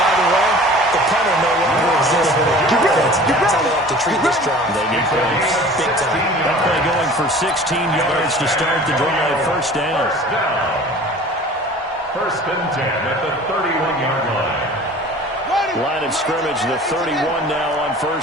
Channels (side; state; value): both; normal; correlation 0.44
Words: by the way, the punter no longer exists for their offense. That's how they have to treat this drive. They need points. Big time. That play going for 16 yards to start the drive. First down. First and 10 at the 31-yard line. Line of scrimmage, the 31 now on